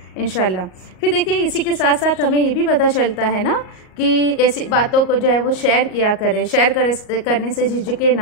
इंशाल्लाह। फिर देखिए इसी के साथ साथ हमें ये भी पता चलता है ना कि ऐसी बातों को जो है वो शेयर किया करें, करने से झिझके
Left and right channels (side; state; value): right; late; 38 ms